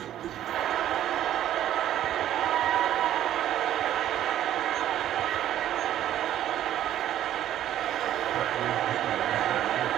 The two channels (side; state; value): left; quieter; 11.9 dB